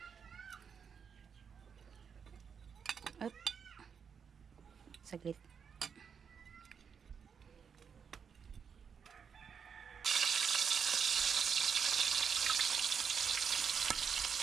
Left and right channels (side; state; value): left; quieter; 6.7 dB